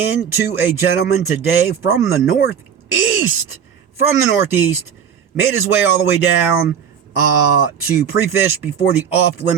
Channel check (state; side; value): quieter; left; 7.8 dB